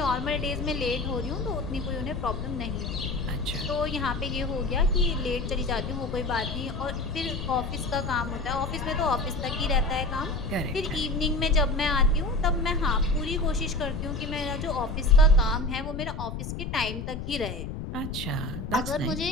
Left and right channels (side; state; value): left; noise; rumble, 6 dB below the sound